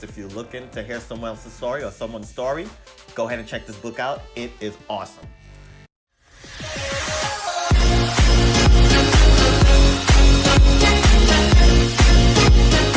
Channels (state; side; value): identical; both; correlation 1.00